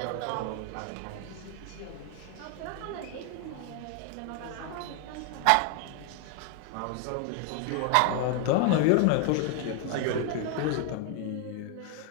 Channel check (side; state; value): both; different; correlation 0.00